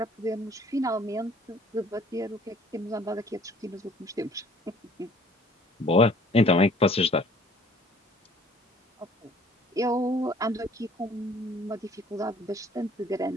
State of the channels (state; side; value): normal; both; correlation 0.55